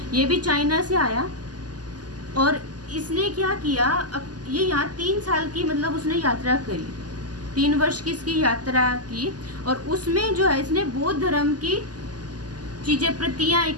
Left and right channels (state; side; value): late; left; 0.69 ms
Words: ये भी चाइना से आया। और इसने क्या किया? ये यहाँ 3 साल की मतलब उसने यात्रा करी, 3 वर्ष की इसकी यात्रा की। और उसमें जो है इसने बौद्ध धर्म की चीजें, प्रतियां